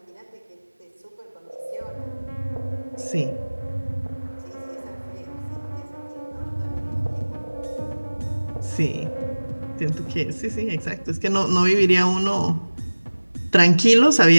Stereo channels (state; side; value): inverted; both; correlation -1.00